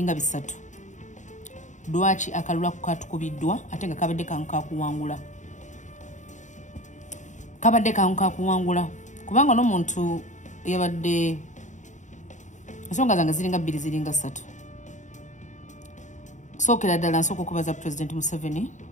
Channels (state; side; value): late; right; 0.35 ms